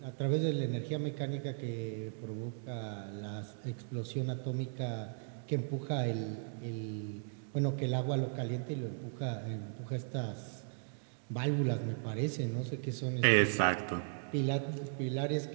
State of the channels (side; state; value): left; silent; digital silence